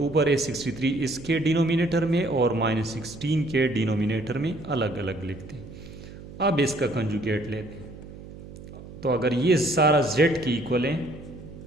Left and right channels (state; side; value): noise; right; hum, 15 dB below the sound